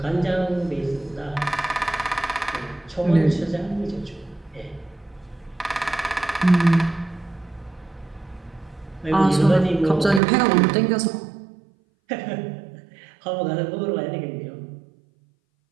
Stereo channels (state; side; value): drops out; left; at 10.2 s